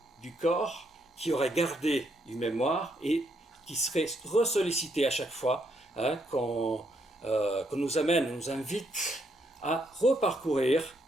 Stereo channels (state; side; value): normal; both; correlation 0.75